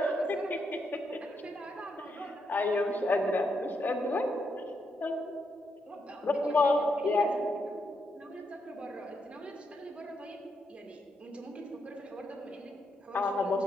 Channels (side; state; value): both; normal; correlation 0.80